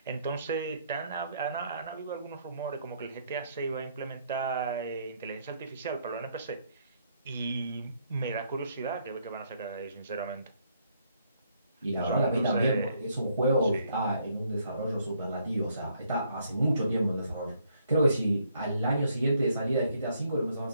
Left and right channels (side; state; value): both; inverted; correlation -0.70